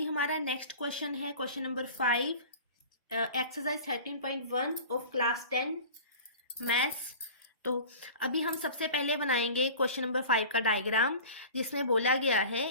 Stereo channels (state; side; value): inverted; both; correlation -0.39